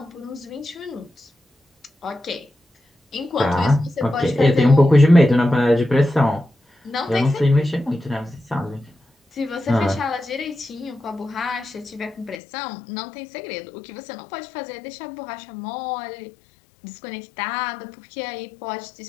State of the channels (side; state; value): right; drops out; at 12.4 s